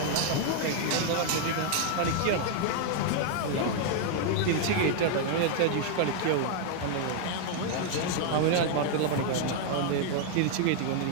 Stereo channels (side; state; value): both; different; correlation 0.00